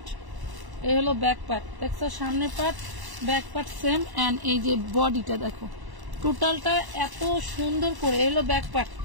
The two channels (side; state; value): left; late; 1.1 ms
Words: এই হলো ব্যাক পার্ট, দেখছো সামনে part back part same, and এই যে বডিটা দেখো টোটালটা এত সুন্দর করে। এই হলো ব্যাক পার্ট,